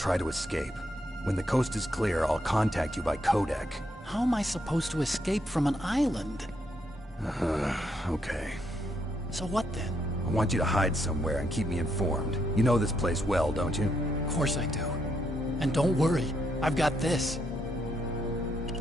to escape. When the coast is clear, I'll contact you by codec. How am I supposed to escape from an island? Okay. So what then? I want you to hide somewhere and keep me informed. You know this place well, don't you? Of course I do. And don't worry, I've got this.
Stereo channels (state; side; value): normal; both; correlation 0.77